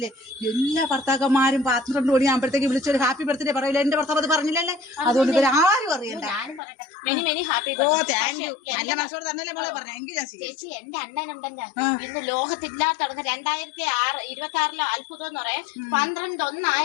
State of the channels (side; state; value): right; drops out; at 6.6 s